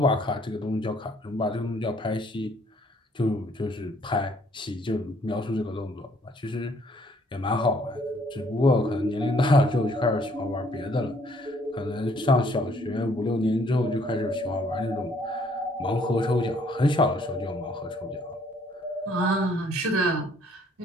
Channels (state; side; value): normal; both; correlation 0.63